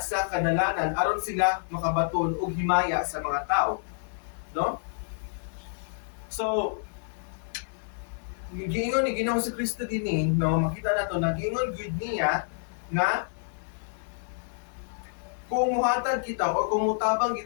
sa kanalanan aron sila makabaton og himaya sa mga tao, no? So giingon ni Ginoong si Kristo dinhi, no, makita nato nagingon gud niya nga kung muhatag kita o kung mutabang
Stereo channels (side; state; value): right; silent; digital silence